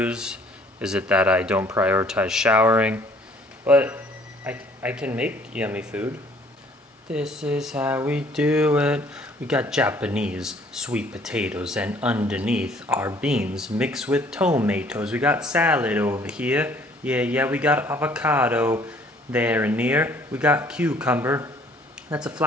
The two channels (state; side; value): normal; both; correlation 0.58